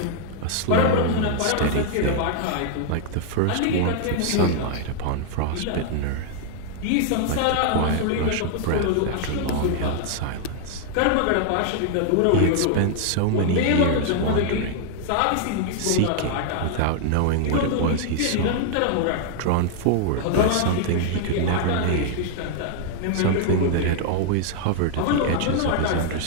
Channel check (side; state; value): both; different; correlation 0.00